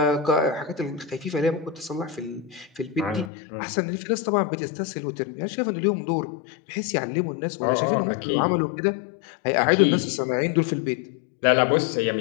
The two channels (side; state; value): right; drops out; at 3.3 s